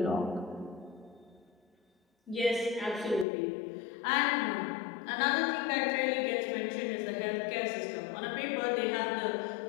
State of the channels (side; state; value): right; drops out; at 3.2 s